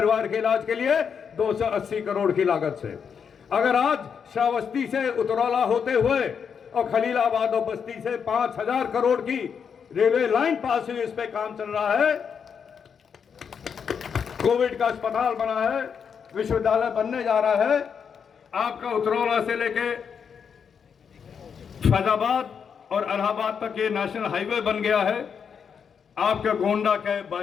के इलाज के लिए 280 करोड़ की लागत से, अगर आज श्रावस्ती से उतरौला होते हुए और खलीलाबाद और बस्ती से 5000 करोड़ की रेलवे लाइन पास हुई, इस पे काम चल रहा है, कोविड का अस्पताल बना है, विश्वविद्यालय बनने जा रहा है, आपका उतरौला से लेके फैजाबाद और इलाहाबाद तक ये नेशनल हाईवे बन गया है, आपके गोंडा के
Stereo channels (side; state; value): right; quieter; 6.8 dB